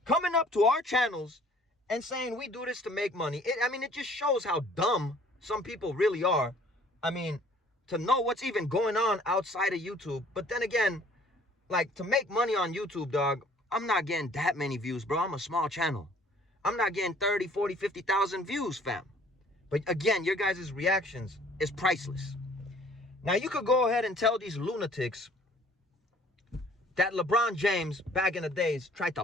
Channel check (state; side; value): normal; both; correlation 0.55